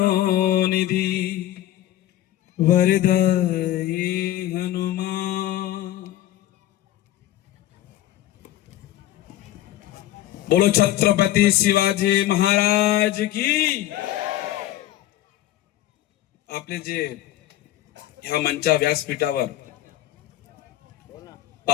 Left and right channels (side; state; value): right; quieter; 13.9 dB